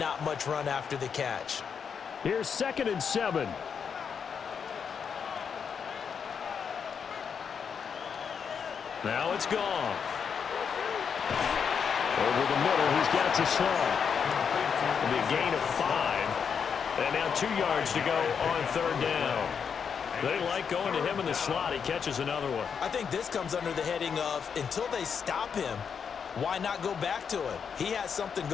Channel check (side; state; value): right; quieter; 6.7 dB